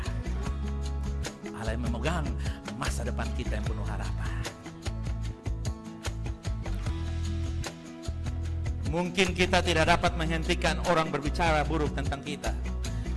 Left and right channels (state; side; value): identical; both; correlation 1.00